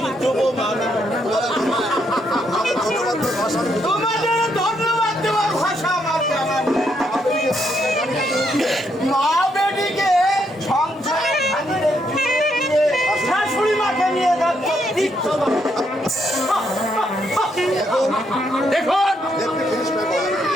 যুবমান তোমাদের ধন্যবাদ দেওয়ার ভাষা আমার জানা নেই। মা বেটিকে সংসারে ভাঙিয়ে দিয়ে শাশুড়ি মাকে নিয়ে যাচ্ছে তীর্থবান। দেখুন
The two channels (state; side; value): normal; both; correlation 0.75